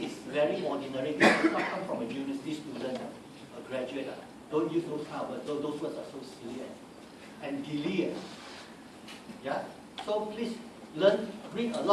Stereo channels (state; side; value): identical; both; correlation 1.00